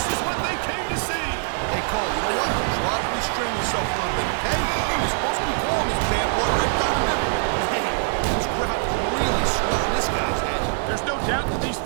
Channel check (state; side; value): silent; left; 63 dB below the other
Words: is what they came to see. Hey, Cole, you know what? Try to restrain yourself a little bit, okay? You're supposed to be calling this bad boy right down the middle. Man, this crowd is really swelling this guy's head. There's no doubt that these